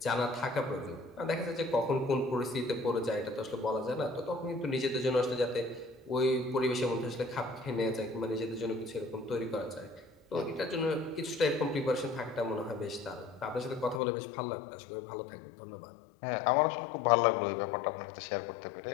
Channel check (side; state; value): right; drops out; at 14.0 s